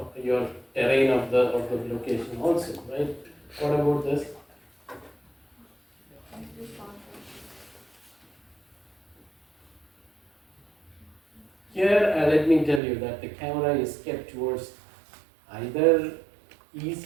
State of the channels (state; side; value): drops out; left; at 12.8 s